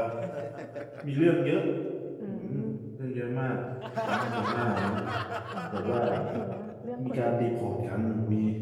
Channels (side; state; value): both; identical; correlation 1.00